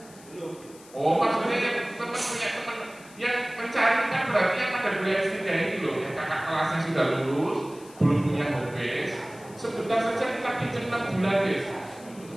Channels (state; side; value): noise; left; hiss, 22 dB below the sound